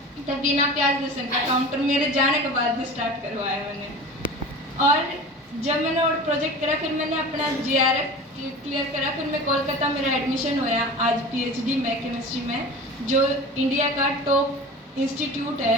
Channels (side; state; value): both; normal; correlation 0.36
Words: तो बिना प्याज लहसुन का काउंटर मेरे जाने के बाद भी स्टार्ट करवाया मैंने। और जब मैंने और प्रोजेक्ट करा फिर मैंने अपना GRF क्लियर करा, फिर मैं कोलकाता मेरा एडमिशन होया आज PhD में केमिस्ट्री में, जो इंडिया का टॉप इंस्टीट्यूट